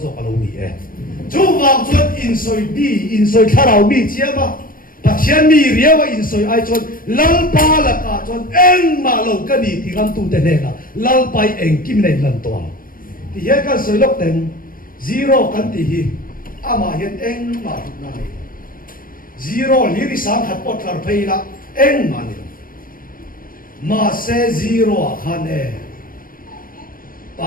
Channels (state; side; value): late; right; 0.41 ms